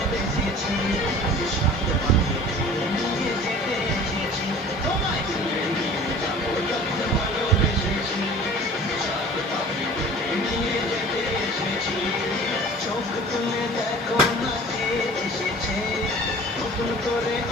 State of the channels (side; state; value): both; normal; correlation 0.44